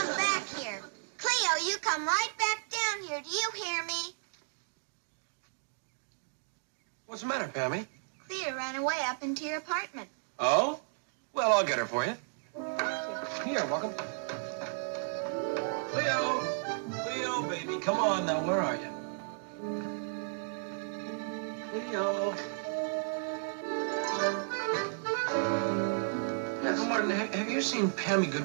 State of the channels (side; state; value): left; silent; digital silence